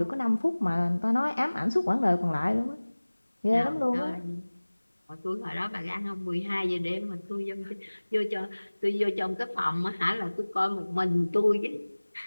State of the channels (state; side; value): inverted; both; correlation -1.00